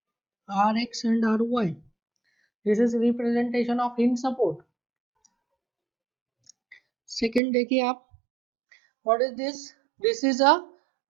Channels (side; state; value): left; drops out; at 7.4 s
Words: Rx and Ry. This is representation of hinge support. Second देखिए आप, what is this? This is a